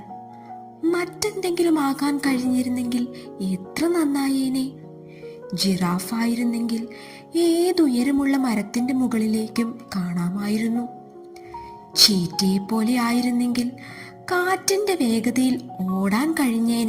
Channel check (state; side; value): identical; both; correlation 1.00